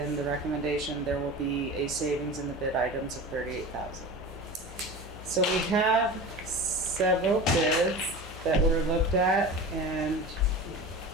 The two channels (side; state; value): both; normal; correlation 0.33